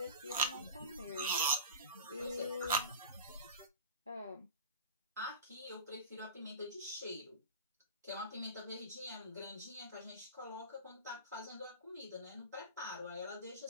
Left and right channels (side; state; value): both; inverted; correlation -0.31